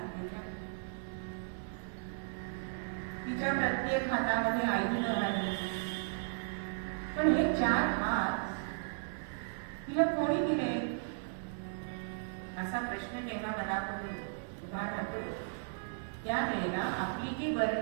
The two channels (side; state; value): left; silent; digital silence